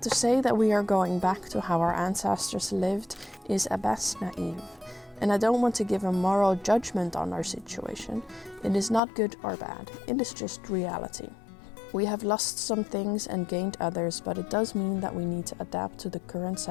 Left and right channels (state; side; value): drops out; right; at 9.0 s